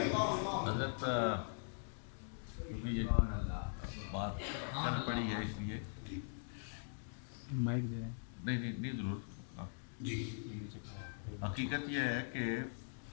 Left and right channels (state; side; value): silent; right; digital silence